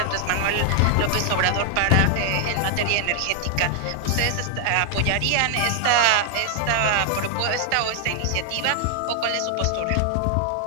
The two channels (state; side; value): different; both; correlation 0.00